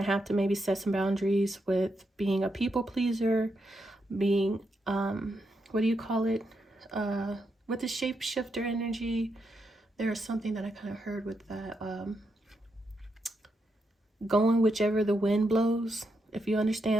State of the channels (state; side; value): normal; both; correlation 0.82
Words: have to maybe set some boundaries with being a people pleaser, being, what do you call it? With the shapeshifter energy, there's something that I kind of heard with that. Going whichever the wind blows. If you